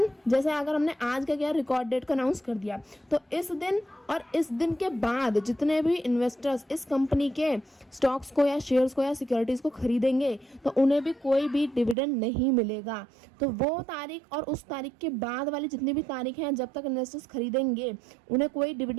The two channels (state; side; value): drops out; left; at 12.0 s